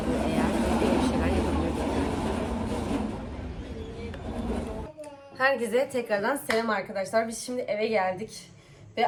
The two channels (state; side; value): identical; both; correlation 1.00